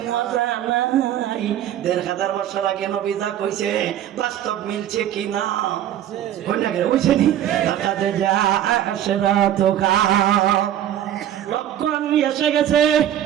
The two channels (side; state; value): left; quieter; 11.3 dB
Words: মজা নাই। ১,৫০০ বছর আগে নবী যা কইছে বাস্তব মিলছে কি না? হইছে নি? লক্ষণ এসে গেছে,